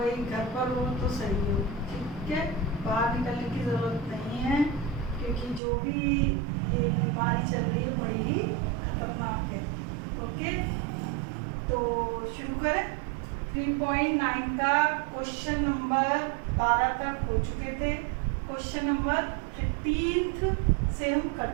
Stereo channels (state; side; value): drops out; left; at 5.6 s